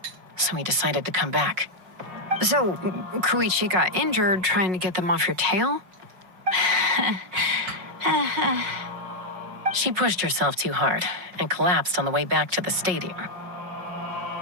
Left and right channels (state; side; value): late; left; 5.4 ms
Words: So we decided to come back. So, Koichi got injured trying to get them off your tail? She pushed herself too hard and collapsed on the way back to the stadium.